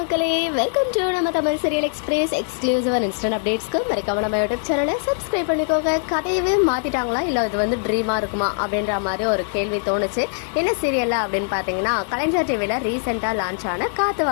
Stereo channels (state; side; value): silent; right; digital silence